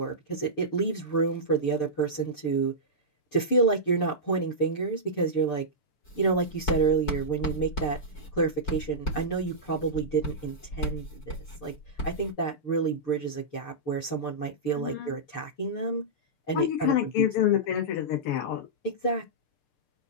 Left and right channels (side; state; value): right; late; 6.7 ms